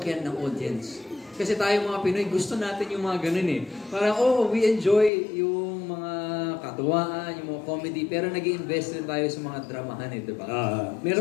ng audience. Kasi tayo mga Pinoy, gusto natin yung mga ganun eh. Parang, we enjoy yung mga katuwaan, yung mga comedy, pero nag-i-invest rin tayo sa mga dramahan eh, di ba?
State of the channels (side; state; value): right; drops out; at 5.1 s